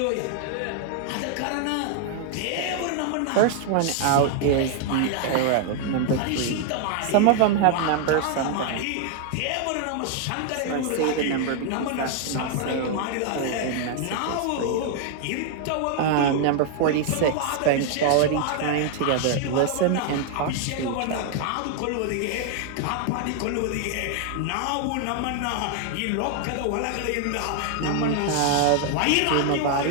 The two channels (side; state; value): both; different; correlation 0.00